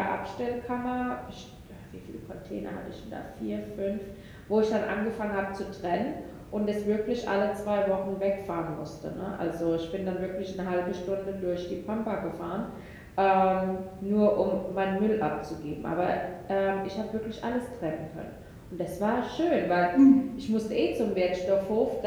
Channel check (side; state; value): both; identical; correlation 1.00